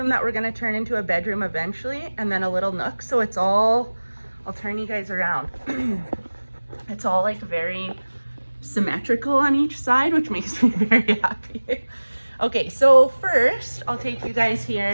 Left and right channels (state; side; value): inverted; both; correlation -1.00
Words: that we're going to turn into a bedroom eventually, and then a little nook. So it's all, I'll turn you guys around. It's all like very symmetrical on each side, which makes me very happy. Okay, so first I'll take you guys here.